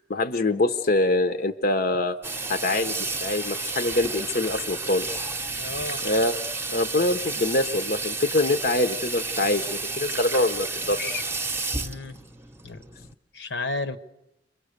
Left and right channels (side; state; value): both; normal; correlation 0.05